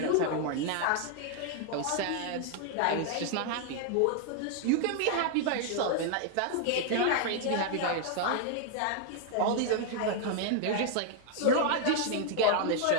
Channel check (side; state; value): both; different; correlation 0.00